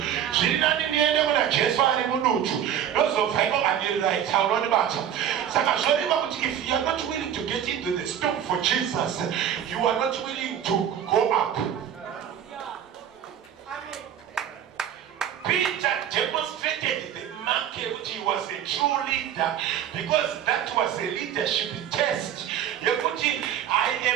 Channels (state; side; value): quieter; left; 9.7 dB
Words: She didn't need anyone, Jesus, and Munuchu. Those of Bible and the right, how on about it. If you are not willing to get into the storm for Jesus, you are not willing to go up. Peter demonstrated the market which he was a true leader because that was a leadership test. I